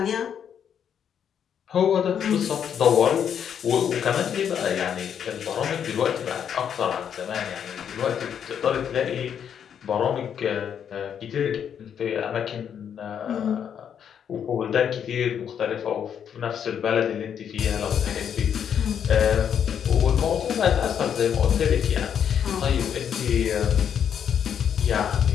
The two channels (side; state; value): right; quieter; 8.4 dB